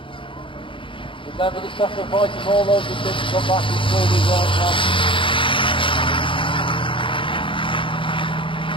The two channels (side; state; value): right; late; 0.25 ms